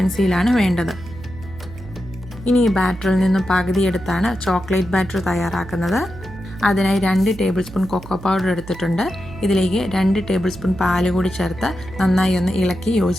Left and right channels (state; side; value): noise; right; hum, 15 dB below the sound